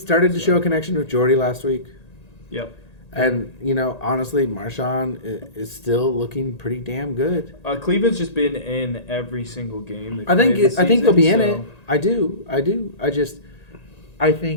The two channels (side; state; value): right; late; 1.9 ms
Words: to show a connection with Jordy last week. Yep. And, honestly, Marshawn is still looking pretty damn good. Cleveland's just been in every single game. I think they'll be in it. I do. I